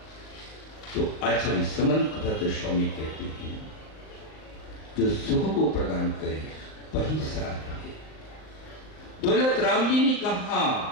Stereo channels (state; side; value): late; right; 38 ms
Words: तो आचार्य समंत भद्र स्वामी कहते हैं, जो सुख को प्रदान करे वही सार है। दौलत राम जी ने कहा